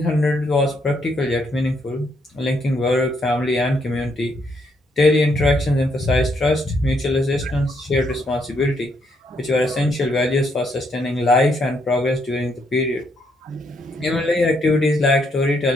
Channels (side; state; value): both; normal; correlation 0.74